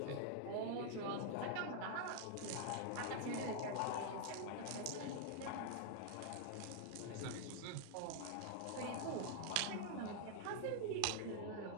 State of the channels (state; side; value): different; both; correlation -0.01